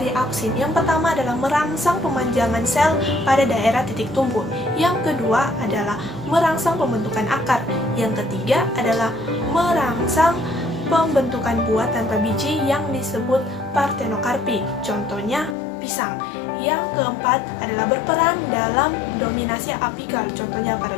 auksin yang pertama adalah merangsang pemanjangan sel pada daerah titik tumbuh. Yang kedua adalah merangsang pembentukan akar. Yang ketiga adalah merangsang pembentukan buah tanpa biji yang disebut partenokarpi. Contohnya pisang. Yang keempat adalah berperan dalam dominasi apikal, contohnya pada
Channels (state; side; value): drops out; right; at 15.6 s